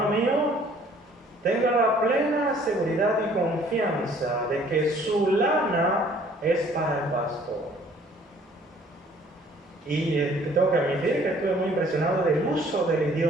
mío, tenga la plena seguridad y confianza de que su lana es para el pastor. Y tengo que admitir que estuve muy impresionado del uso del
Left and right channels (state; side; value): normal; both; correlation 0.57